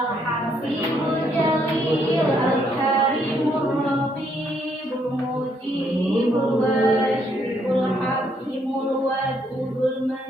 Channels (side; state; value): both; normal; correlation 0.72